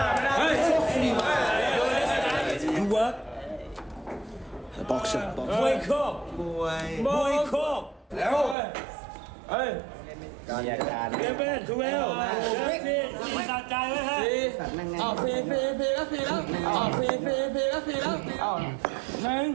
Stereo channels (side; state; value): left; drops out; at 8.6 s